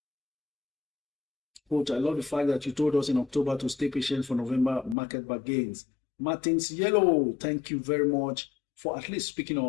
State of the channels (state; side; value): drops out; right; at 5.0 s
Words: Coach, I love the fact that you told us in October to stay patient for November market back gains. Martins Yellow, thank you very much for at least speaking